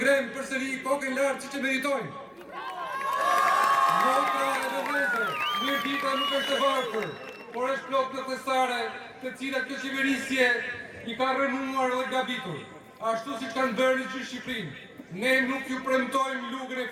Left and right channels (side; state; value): both; identical; correlation 1.00